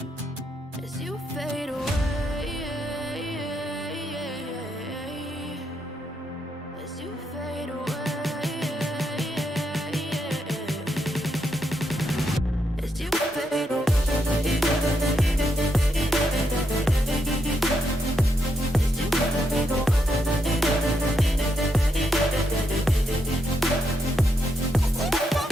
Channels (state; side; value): normal; both; correlation 0.81